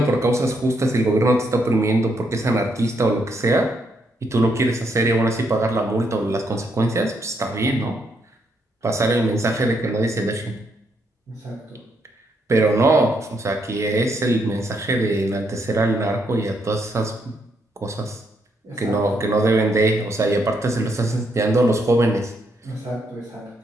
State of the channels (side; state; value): both; normal; correlation 0.76